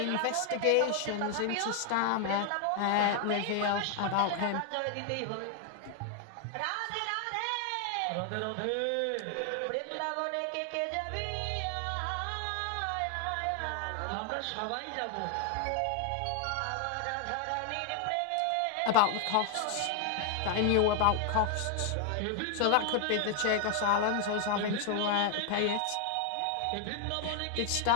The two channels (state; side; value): different; both; correlation 0.00